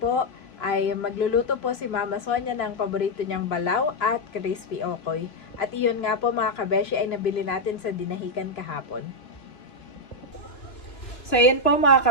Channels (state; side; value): late; right; 2.9 ms